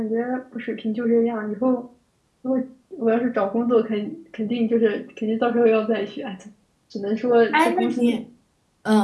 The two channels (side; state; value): both; identical; correlation 1.00